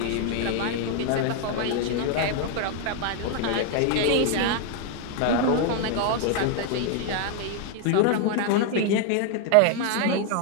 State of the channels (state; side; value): different; both; correlation 0.00